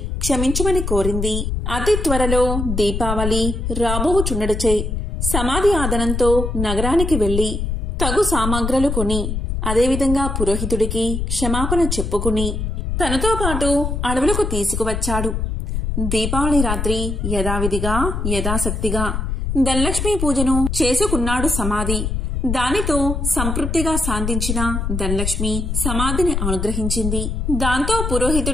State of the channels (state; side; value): noise; left; rumble, 2 dB below the sound